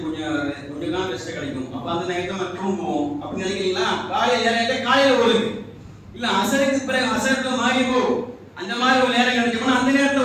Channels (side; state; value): both; identical; correlation 1.00